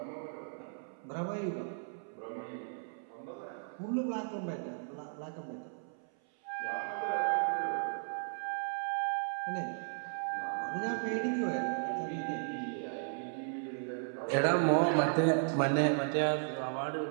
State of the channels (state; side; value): silent; left; 54 dB below the other